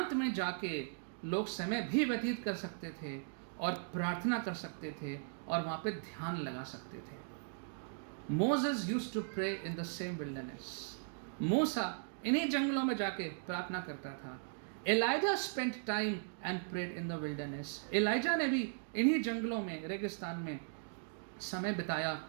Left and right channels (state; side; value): silent; left; digital silence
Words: में जाके लोग समय भी व्यतीत कर सकते थे और प्रार्थना कर सकते थे और वहाँ पे ध्यान लगा सकते थे. Moses used to pray in the same wilderness. मूसा इन्हीं जंगलों में जाके प्रार्थना करता था. Elijah spent time and prayed in the wilderness. Elijah ने भी इन्हीं जंगलों में, रेगिस्तान में समय बिताया